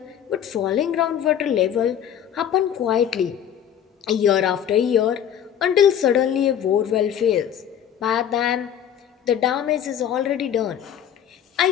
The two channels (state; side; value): quieter; right; 9.4 dB